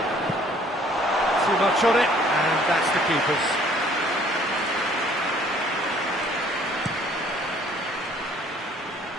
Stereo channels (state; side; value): normal; both; correlation 0.58